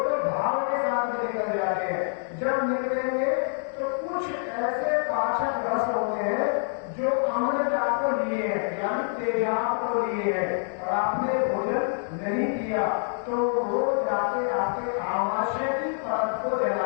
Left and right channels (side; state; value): right; silent; 58 dB below the other